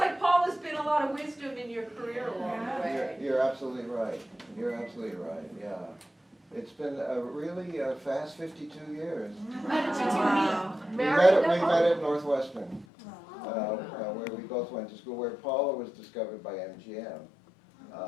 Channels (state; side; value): drops out; right; at 12.9 s